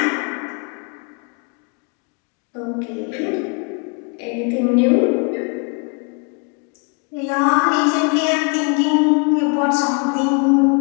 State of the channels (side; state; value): right; quieter; 35.8 dB